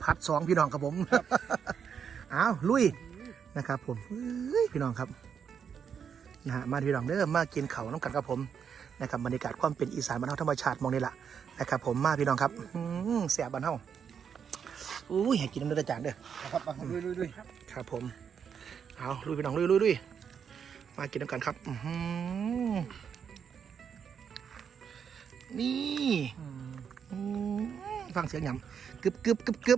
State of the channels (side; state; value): left; quieter; 7.3 dB